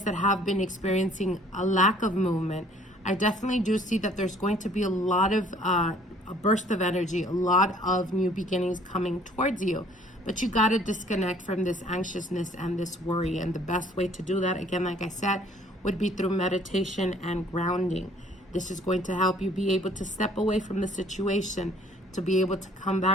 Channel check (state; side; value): normal; both; correlation 0.57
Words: that have been experiencing a lack of movement, I definitely do see that there's going to be a lot of a burst of energy, a lot of new beginnings coming towards you. But you got to disconnect from this anxiousness and this worry. And the best way to do that, again, like I said, would be through meditation and grounding. This is going to help you be able to step away from the situation, to be able to come